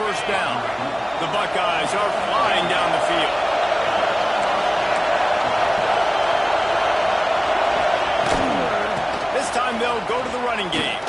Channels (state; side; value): identical; both; correlation 1.00